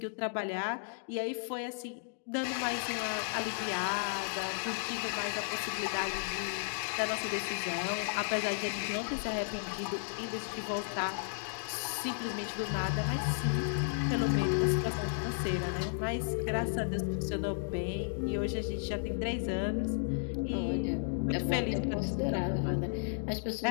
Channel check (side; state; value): right; silent; digital silence